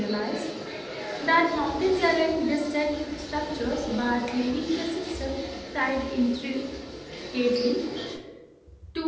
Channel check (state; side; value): identical; both; correlation 1.00